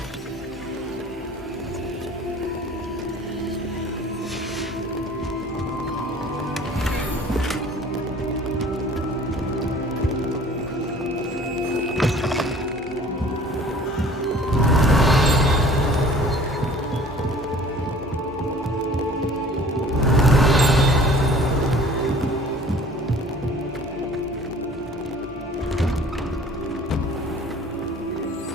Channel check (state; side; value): normal; both; correlation 0.49